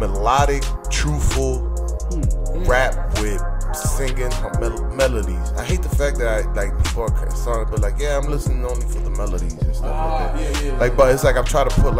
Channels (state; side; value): identical; both; correlation 1.00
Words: truthful rap with singing melodies. I hate the fact that people are starting to be like, yeah, I'm listening only for the melodies and stuff like that. Yeah. Like, but it's like I'm trying to put